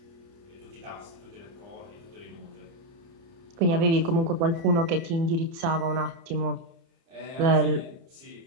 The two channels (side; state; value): left; late; 30 ms